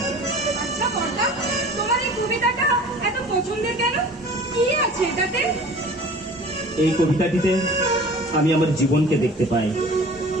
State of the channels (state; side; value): normal; both; correlation 0.44